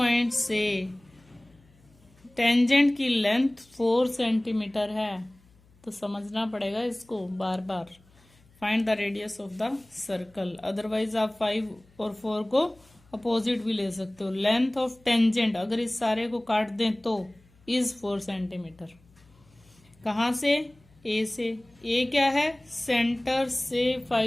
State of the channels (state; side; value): noise; left; hum, 30 dB below the sound